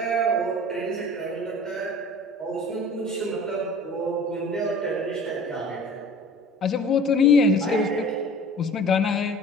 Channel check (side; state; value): both; normal; correlation 0.44